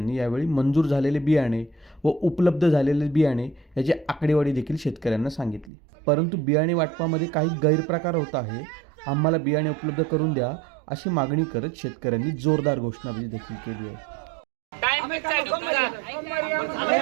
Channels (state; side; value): drops out; left; at 5.7 s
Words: यावेळी मंजूर झालेले बियाणे व उपलब्ध झालेले बियाणे याची आकडेवारी देखील शेतकऱ्यांना सांगितली. परंतु बियाणे वाटपामध्ये काही गैरप्रकार होत आहे, आम्हाला बियाणे उपलब्ध करून द्या अशी मागणी करत शेतकऱ्यांनी जोरदार घोषणाबाजी देखील केली आहे.